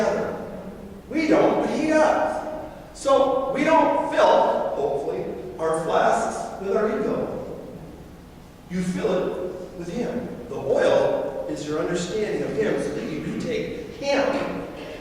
We don't, but he does. So we don't fill, hopefully, our flasks with our ego. You fill it with him. The oil is your understanding of him so that you can take him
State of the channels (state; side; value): identical; both; correlation 1.00